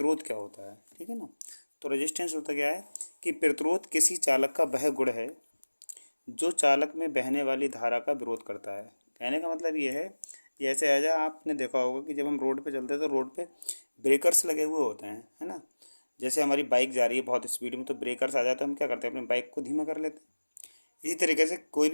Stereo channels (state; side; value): inverted; both; correlation -1.00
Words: क्या होता है, ठीक है ना। तो रेजिस्टेंस होता क्या है कि प्रतिरोध किसी चालक का वह गुण है जो चालक में बहने वाली धारा का विरोध करता है। कहने का मतलब ये है, जैसे ऐसा आपने देखा होगा कि जब हम रोड पे चलते हैं तो रोड पे ब्रेकर्स लगे हुए होते हैं, है ना। जैसे हमारी बाइक जा रही है बहुत स्पीड में, तो ब्रेकर्स आ जाए तो हम क्या करते हैं, अपनी बाइक को धीमा कर लेते हैं। इसी तरीके से कोई